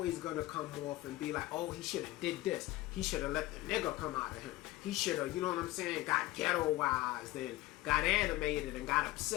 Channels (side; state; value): right; quieter; 17.9 dB